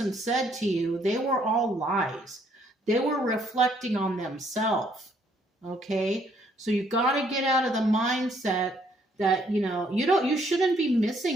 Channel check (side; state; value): both; normal; correlation 0.67